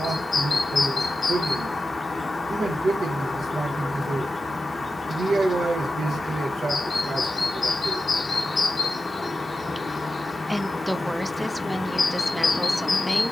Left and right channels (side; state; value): both; normal; correlation 0.92